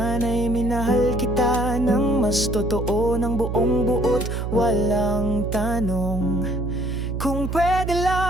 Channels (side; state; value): right; noise; hum, 3 dB below the sound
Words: minahal kita ng mas totoo, ng buong buot, walang tanong. Kung pwede